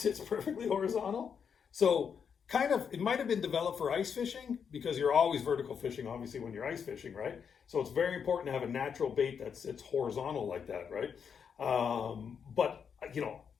perfectly horizontal? So kind of, it might have been developed for ice fishing because you're always vertical fishing, obviously, when you're ice fishing, right? So it's very important to have a natural bait that sits horizontal like that, right? But, you know,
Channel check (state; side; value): quieter; right; 6.9 dB